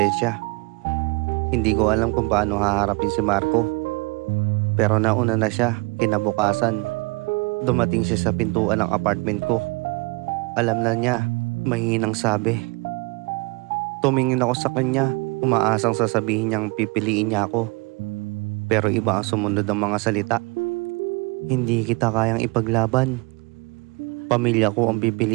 Hindi ko alam kung paano haharapin si Marco. Pero nauna na siya, kinabukasan. Dumating siya sa pintuan ng apartment ko. Alam na niya, mahinang sabi. Tumingin ako sa kanya, umaasang sasabihin niyang pipiliin niya ako. Pero iba ang sumunod ng mga salita. Hindi kita kayang ipaglaban. Pamilya ko ang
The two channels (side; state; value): left; quieter; 27.6 dB